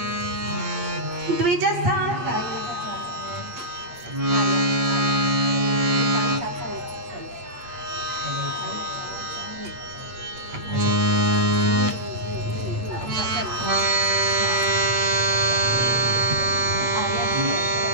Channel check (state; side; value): late; left; 8.4 ms